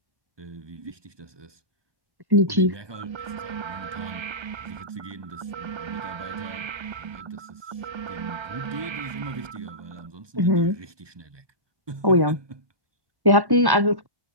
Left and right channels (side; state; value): left; late; 1.1 ms